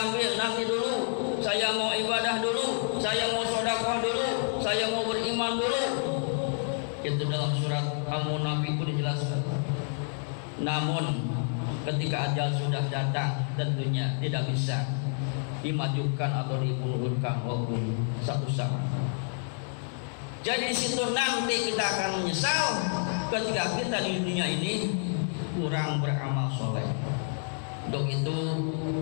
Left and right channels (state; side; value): silent; right; 59 dB below the other